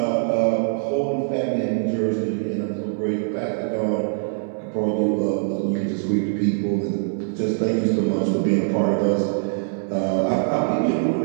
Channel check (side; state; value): left; silent; 59 dB below the other